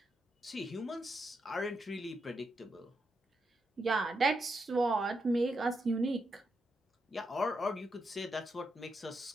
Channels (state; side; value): normal; both; correlation 0.83